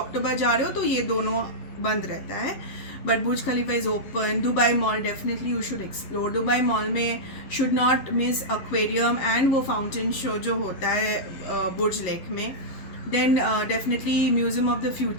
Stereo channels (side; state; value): right; late; 11 ms